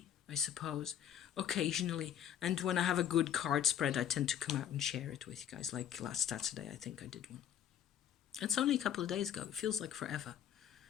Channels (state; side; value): quieter; right; 9.7 dB